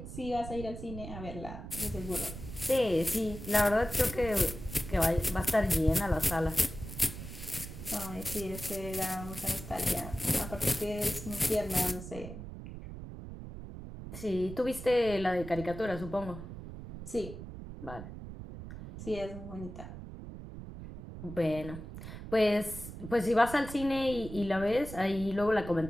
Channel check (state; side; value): noise; right; rumble, 11 dB below the sound